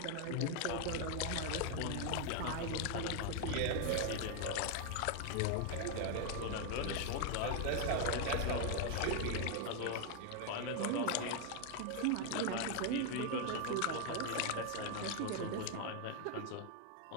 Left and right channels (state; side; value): different; both; correlation 0.01